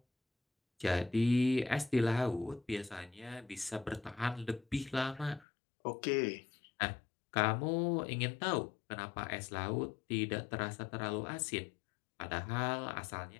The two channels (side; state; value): right; drops out; at 5.5 s